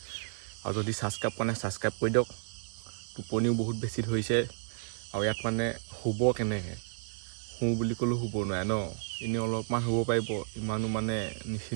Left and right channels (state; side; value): silent; left; digital silence